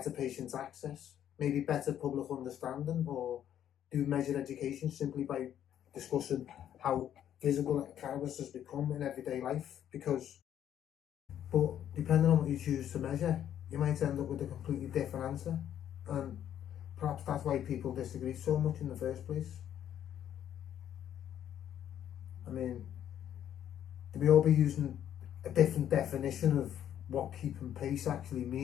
patient access, maybe better public understanding? Or do we measure education simply by discussing how visible cannabis has become in everyday life? But depending on what you choose to measure, you might end up with a completely different answer, and perhaps that's why people disagree so much in the first place. I mean, do we all be using a different definition of what keeping pace actually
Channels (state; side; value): quieter; right; 10.4 dB